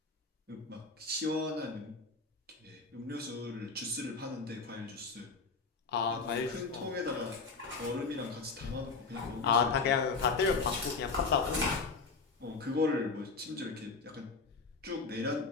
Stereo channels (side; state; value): right; quieter; 4.4 dB